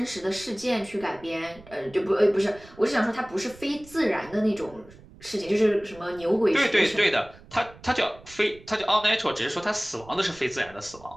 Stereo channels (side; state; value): right; noise; rumble, 22 dB below the sound